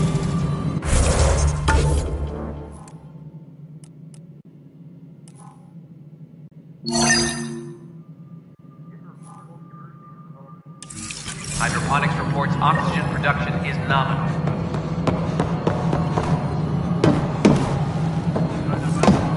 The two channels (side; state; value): both; identical; correlation 1.00